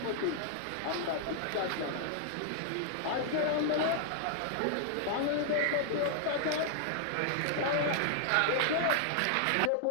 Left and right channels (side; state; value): both; different; correlation -0.01